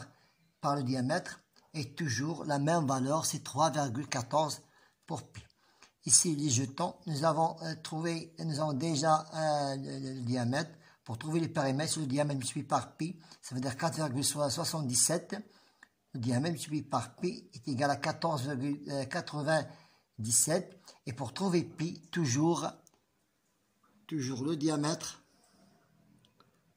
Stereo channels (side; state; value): both; identical; correlation 1.00